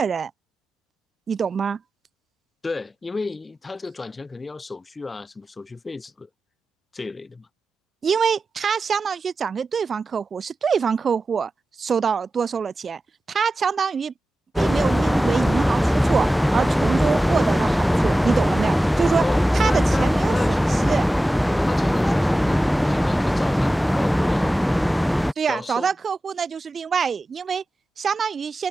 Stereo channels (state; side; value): normal; both; correlation 0.94